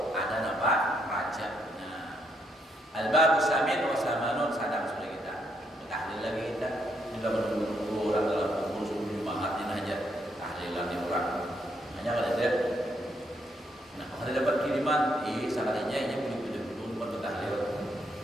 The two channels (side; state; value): both; normal; correlation 0.75